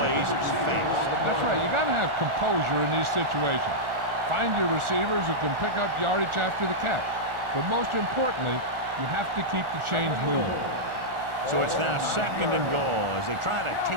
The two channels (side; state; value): left; late; 1.4 ms